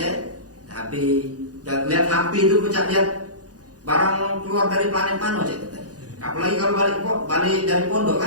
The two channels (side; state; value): left; late; 0.68 ms